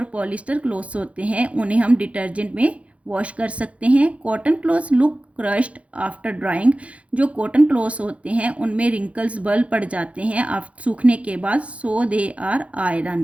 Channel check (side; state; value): left; late; 0.064 ms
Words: पॉलिस्टर क्लोथ्स होते हैं उन्हें हम डिटर्जेंट में वॉश कर सकते हैं। Cotton clothes look crushed after drawing. जो कॉटन क्लोथ्स होते हैं उनमें रिंकल्स बल पड़ जाते हैं सूखने के बाद, सो दे आर